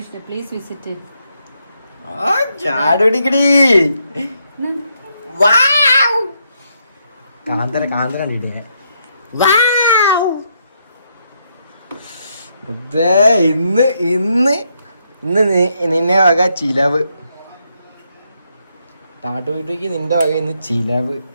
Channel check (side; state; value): both; inverted; correlation -0.77